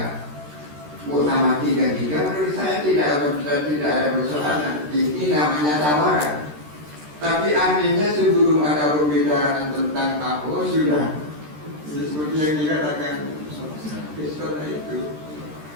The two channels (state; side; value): late; left; 13 ms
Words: Muktamar 33, menurut saya tidak ada persoalan. Ini namanya tawaran. Tapi artinya sebelum ada pembicaraan tentang akhwat sudah seperti yang dikatakan Kristona itu,